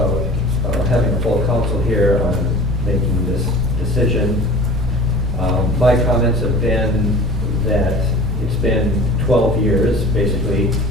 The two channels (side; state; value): both; normal; correlation 0.41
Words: having a full council here on making this decision. My comments have been that it's been 12 years, basically,